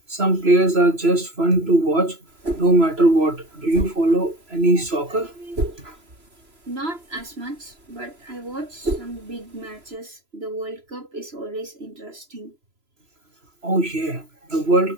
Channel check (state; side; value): late; left; 3.0 ms